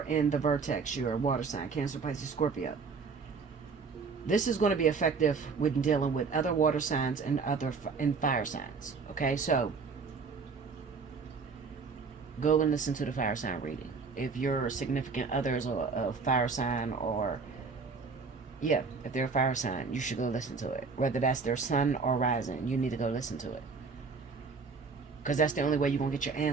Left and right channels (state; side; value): quieter; left; 4.9 dB